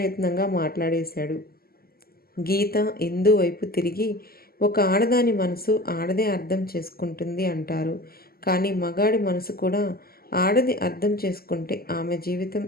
మాట్లాడేశాడు. గీత ఇందు వైపు తిరిగి, ఒక ఆడదాని మనసు ఆడదే అర్థం చేసుకుంటుంది అంటారు. కానీ మగాడి మనసు కూడా ఆడది అర్థం చేసుకుంటే ఆమె జీవితం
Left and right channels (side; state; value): right; late; 0.44 ms